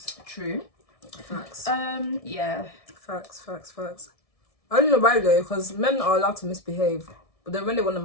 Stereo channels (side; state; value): right; late; 1.7 ms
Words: True. Facts. Yeah. Facts. I don't know why though, because men are allowed to misbehave, but then when they want to